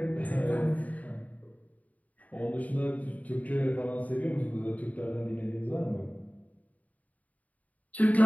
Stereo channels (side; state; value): right; late; 0.072 ms